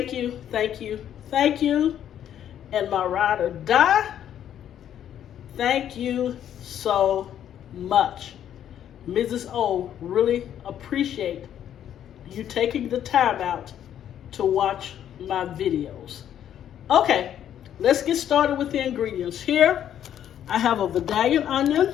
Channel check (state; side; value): quieter; right; 10.3 dB